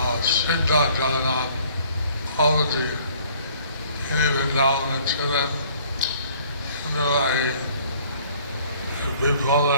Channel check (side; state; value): both; inverted; correlation -0.57